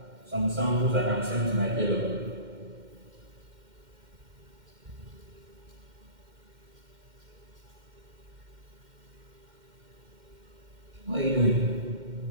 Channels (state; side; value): late; left; 2.1 ms